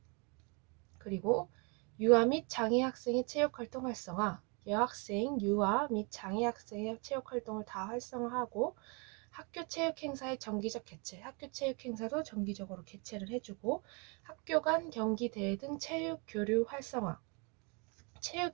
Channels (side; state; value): left; quieter; 32.3 dB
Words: 그리고 유아 및 장애 학생의 체육활동 활성화, 여학생, 유아 및 장애 학생의 체육 활동을 다 활성화하고 학교 체육 행사의 정기적 개최, 학교 체육 행사도 정기적으로 개최를 해주고 학교 간 경기 대회 등 체육 교류 활성화, 체육